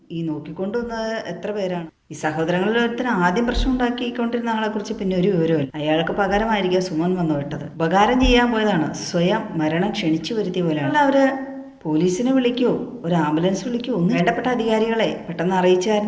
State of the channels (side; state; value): both; identical; correlation 1.00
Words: ഈ നോക്കിക്കൊണ്ടുവന്നത് എത്ര പേരാണ്? ഈ സഹോദരങ്ങളിൽ ഒരുത്തിന് ആദ്യം പ്രശ്നം ഉണ്ടാക്കിക്കൊണ്ടിരുന്ന ആളെക്കുറിച്ച് പിന്നെ ഒരു വിവരമില്ല. അയാൾക്ക് പകരമായിരിക്കും സുമൻ വന്നു വിട്ടത്. ഉപകാരം ചെയ്യാൻ പോയതാണ്, സ്വയം മരണം ക്ഷണിച്ചു വരുത്തിയ പോലെയാണ്. അവര് പോലീസിനെ വിളിക്കുമോ ഒരു ആംബുലൻസ് വിളിക്കുമോ ഒന്നും വേണ്ടപ്പെട്ട അധികാരികളെ പെട്ടെന്ന്